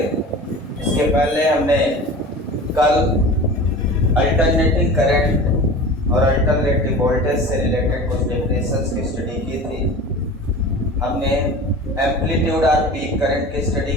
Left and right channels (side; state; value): both; normal; correlation 0.36